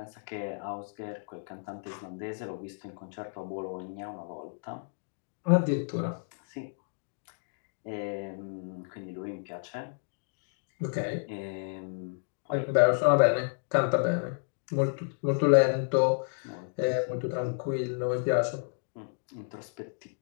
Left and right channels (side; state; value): right; silent; digital silence